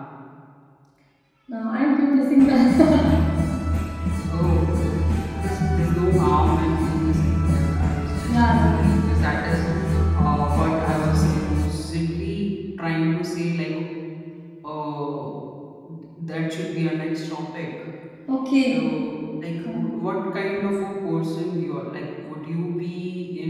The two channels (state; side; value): identical; both; correlation 1.00